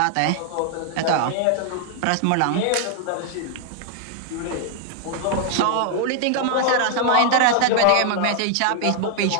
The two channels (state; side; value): different; both; correlation 0.00